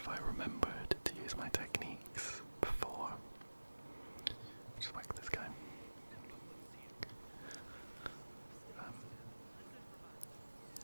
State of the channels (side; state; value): both; inverted; correlation -1.00